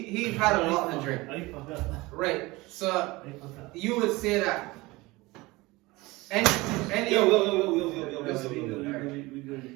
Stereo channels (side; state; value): left; quieter; 21.6 dB